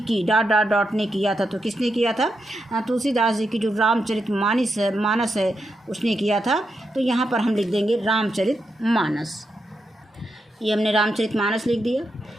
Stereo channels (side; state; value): both; normal; correlation 0.84